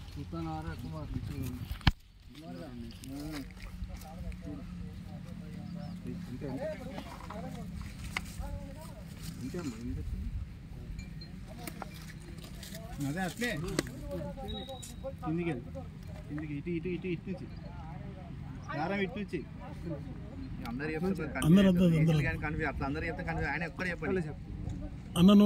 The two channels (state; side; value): identical; both; correlation 1.00